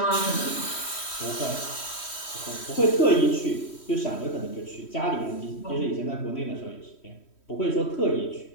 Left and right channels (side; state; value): right; late; 3.1 ms